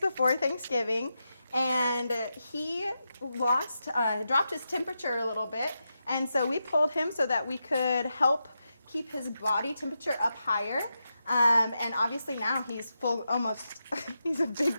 Thanksgiving, and he dropped his temperature a little bit, and so we pulled him so that we could help keep his body temperature up higher. And obviously now he's he's a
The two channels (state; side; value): inverted; both; correlation -0.87